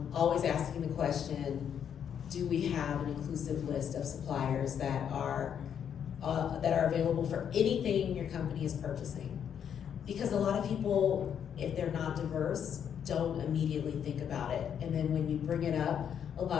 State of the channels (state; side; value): quieter; right; 8.4 dB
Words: asking the question, do we have an inclusive list of suppliers that are available for anything your company is purchasing? Because a lot of people, if they're not diverse, don't immediately think about it. And then when you bring it up, a